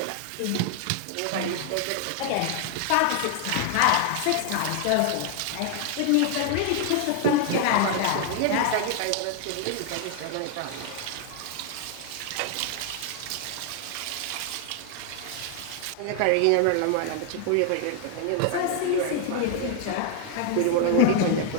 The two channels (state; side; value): different; both; correlation 0.00